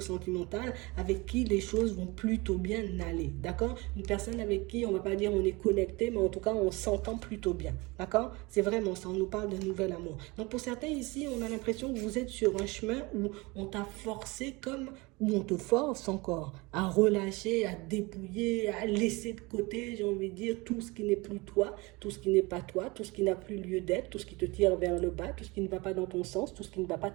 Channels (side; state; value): left; quieter; 24.6 dB